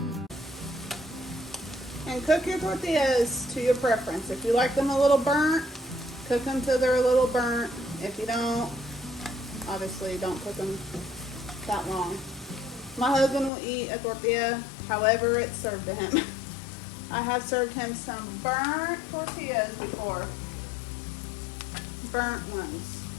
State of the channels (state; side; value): drops out; right; at 13.5 s